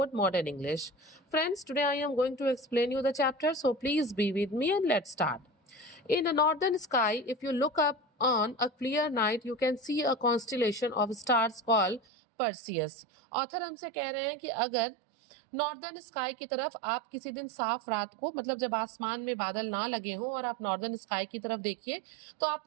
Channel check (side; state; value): left; drops out; at 12.0 s